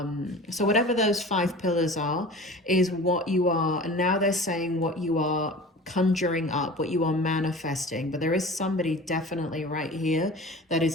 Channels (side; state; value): both; normal; correlation 0.38